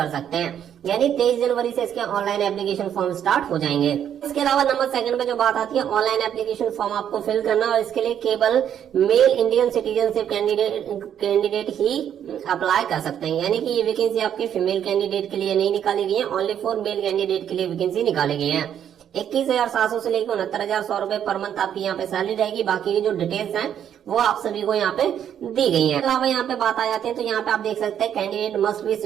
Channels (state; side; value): quieter; left; 9.5 dB